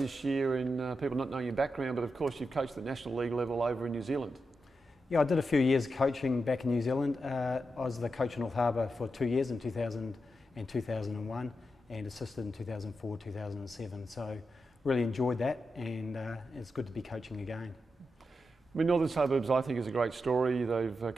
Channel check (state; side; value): normal; both; correlation 0.87